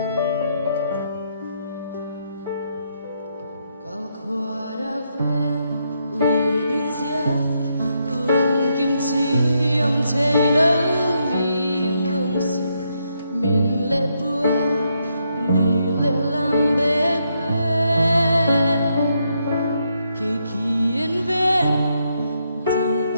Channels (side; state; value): both; inverted; correlation -0.79